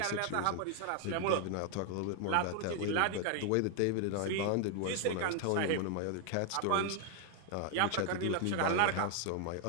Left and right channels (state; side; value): different; both; correlation 0.00